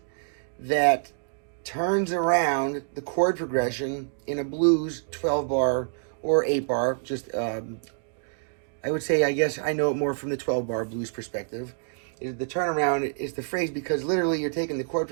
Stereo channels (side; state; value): left; silent; digital silence